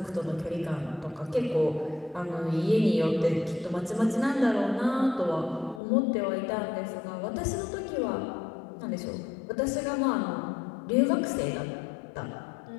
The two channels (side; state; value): right; drops out; at 5.8 s